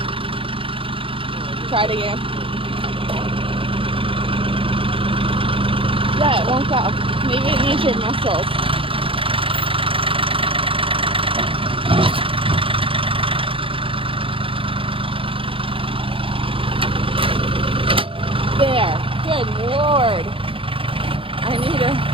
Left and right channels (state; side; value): late; left; 0.26 ms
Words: Try it again. Yeah, it won't go. Maybe it needs your muscles. There. Good Lord. I need to